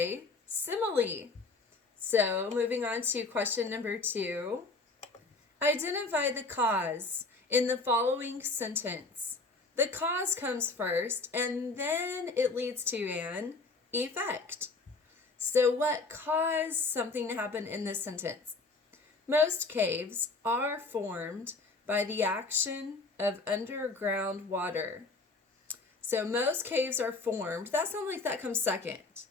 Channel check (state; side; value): quieter; right; 3.6 dB